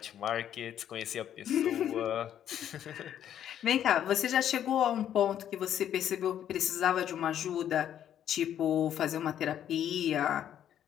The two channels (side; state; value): right; quieter; 10.3 dB